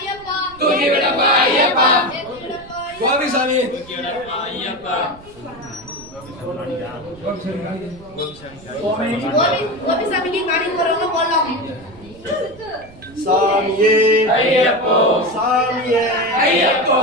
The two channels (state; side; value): noise; right; rumble, 22 dB below the sound